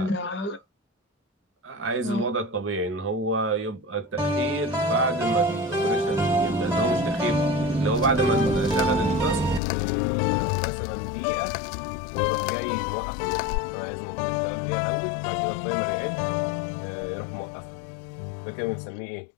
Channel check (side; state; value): right; drops out; at 9.6 s